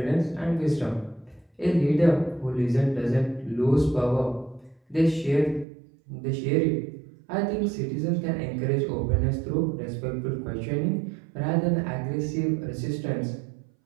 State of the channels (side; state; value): left; drops out; at 5.7 s